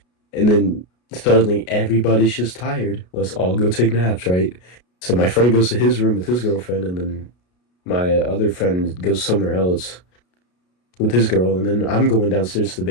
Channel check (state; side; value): late; right; 33 ms